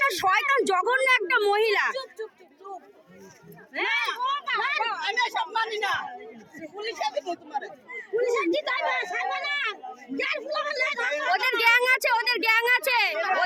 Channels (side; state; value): both; identical; correlation 1.00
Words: শয়তান জঘন্য একটা মহিলা। ওদের গ্যাং আছে, ওদের গ্যাং আছে,